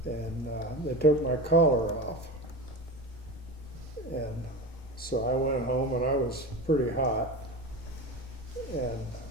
And they took my collar off. And so I went home, and I was pretty hot.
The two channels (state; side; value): normal; both; correlation 0.27